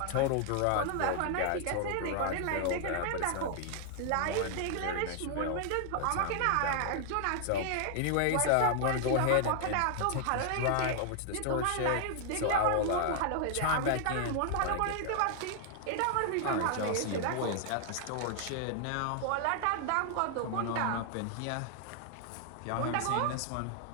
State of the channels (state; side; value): different; both; correlation 0.00